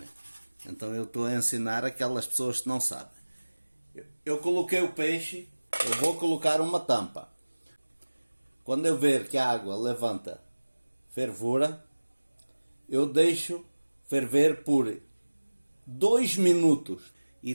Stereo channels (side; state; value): both; inverted; correlation -1.00